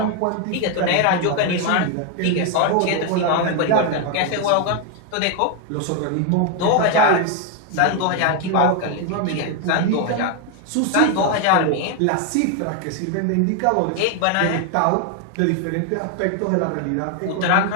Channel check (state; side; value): different; both; correlation 0.01